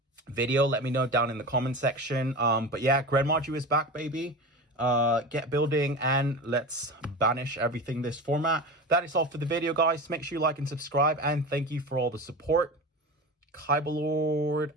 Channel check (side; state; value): both; normal; correlation 0.29